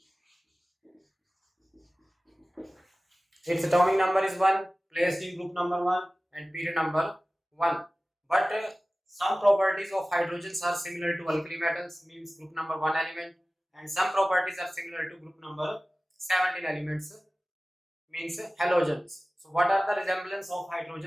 Its atomic number is 1, placed in group number 1 and period number 1. But some properties of hydrogens are similar to alkali metals, means group number 1 element, and some properties are similar to group number 17 elements, means halogens. So what are the resemblance of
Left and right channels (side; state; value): both; normal; correlation 0.97